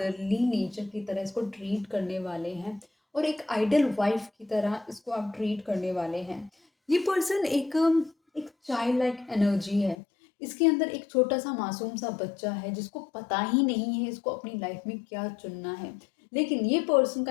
नेचर की तरह इसको ट्रीट करने वाले हैं और एक आइडल वाइफ़ की तरह इसको आप ट्रीट करने वाले हैं। ये पर्सन एक चाइल्ड लाइक एनर्जी है। इसके अंदर एक छोटा-सा मासूम-सा बच्चा है, जिसको पता ही नहीं है इसको अपनी लाइफ़ में क्या चुनना है। लेकिन ये पर्सन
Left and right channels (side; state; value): right; drops out; at 10.0 s